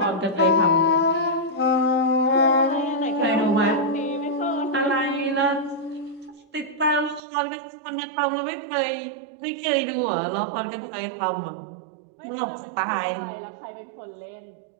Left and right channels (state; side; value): drops out; left; at 7.2 s